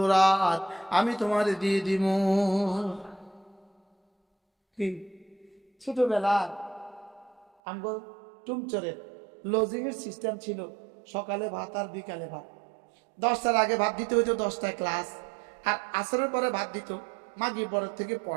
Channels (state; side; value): drops out; left; at 7.5 s